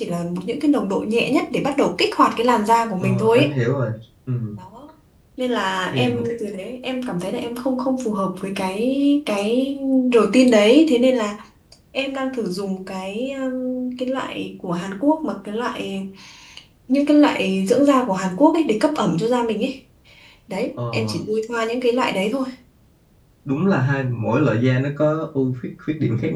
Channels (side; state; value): both; identical; correlation 1.00